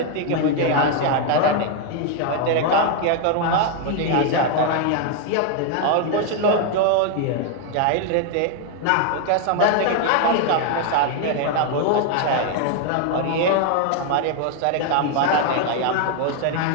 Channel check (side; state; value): both; different; correlation 0.01